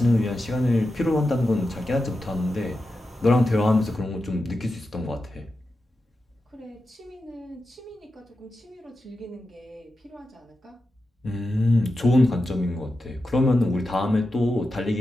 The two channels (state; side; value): normal; both; correlation 0.90